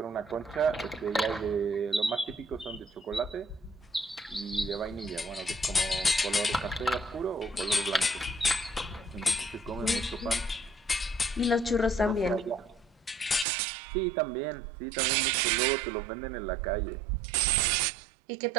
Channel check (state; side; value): drops out; left; at 13.5 s